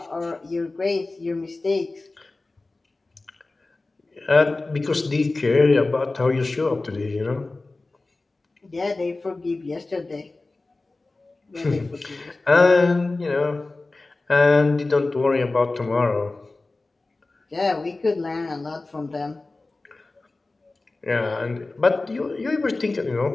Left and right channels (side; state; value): right; quieter; 3.3 dB